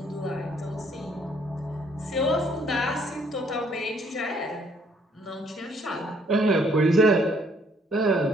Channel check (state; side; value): normal; both; correlation 0.66